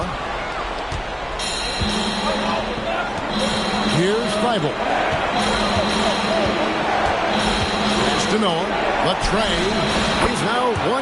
Here's Thybulle. Pass to Noah. Latrey. He's now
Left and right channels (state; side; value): identical; both; correlation 1.00